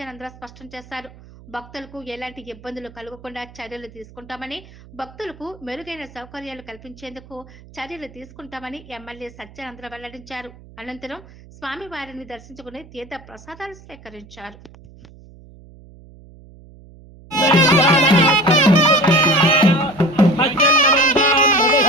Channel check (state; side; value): noise; right; hum, 22 dB below the sound